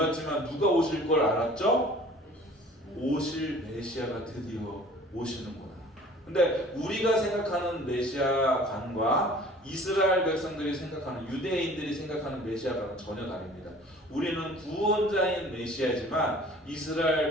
누가 오실 걸 알았죠? 오실 메시아가 드디어 오시는구나. 근데 우리가 생각하는 메시아관과 이스라엘 백성들이 생각하는, 유대인들이 생각하는 메시아관은 전혀 다릅니다. 우리는 구원자인 메시아지만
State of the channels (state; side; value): normal; both; correlation 0.48